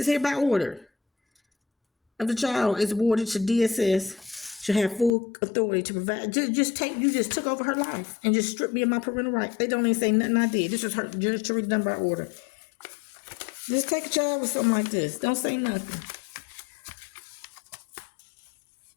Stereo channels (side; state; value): right; drops out; at 5.1 s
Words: hereby ordered. If the child is awarded to DSS, should have full authority to provide. You just took over her life and just stripped me of my parental rights. They don't even say nothing I did. This was her just to read done by order. Just take a child with something like this. Don't say nothing.